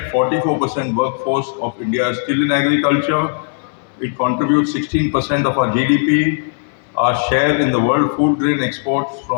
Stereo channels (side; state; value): right; silent; digital silence